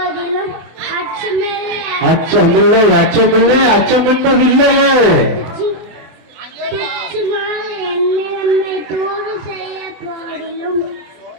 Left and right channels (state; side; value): late; left; 24 ms